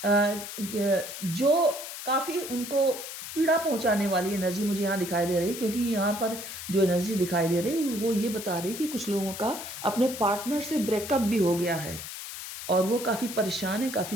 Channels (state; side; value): noise; left; hiss, 9 dB below the sound